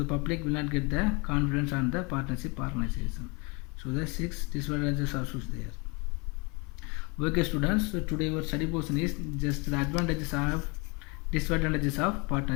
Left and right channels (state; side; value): quieter; right; 29.6 dB